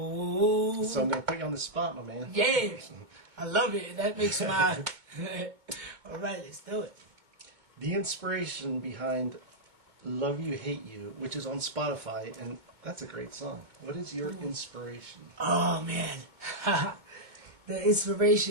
So I'm going to put you on the spot, my man. Yeah. I love it. That makes my... All right, let's do it. The inspiration behind Love You, Hate You, which is on Spotify, and that's a great song. What is your inspiration? Oh, man. The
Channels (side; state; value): left; late; 2.2 ms